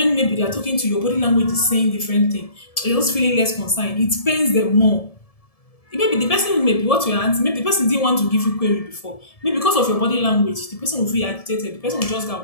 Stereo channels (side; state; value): right; late; 1.7 ms